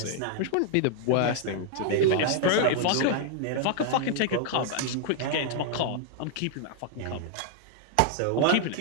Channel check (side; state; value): both; different; correlation 0.00